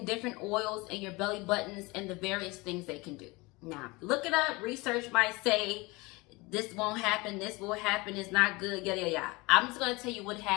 different oils in your belly buttons and the various things they can do. Now, look it up. Research might say this won't happen, this will happen, it's not good, yada, yada, yada. I'm just going to tell you what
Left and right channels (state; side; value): quieter; right; 24.2 dB